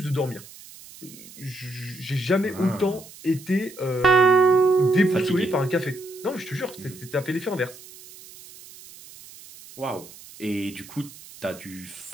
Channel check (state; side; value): noise; right; hiss, 19 dB below the sound